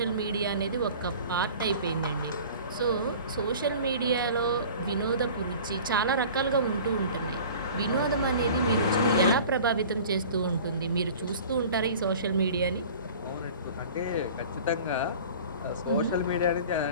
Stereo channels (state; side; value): inverted; both; correlation -0.42